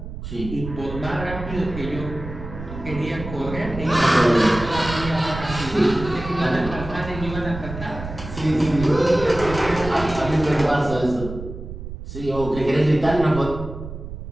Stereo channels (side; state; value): right; noise; rumble, 10 dB below the sound